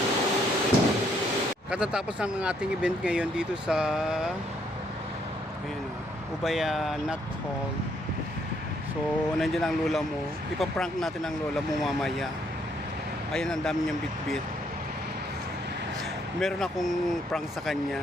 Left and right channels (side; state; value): both; normal; correlation 0.70